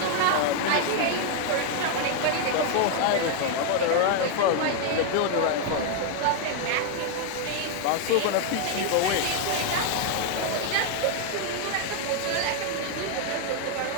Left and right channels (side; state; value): both; different; correlation 0.00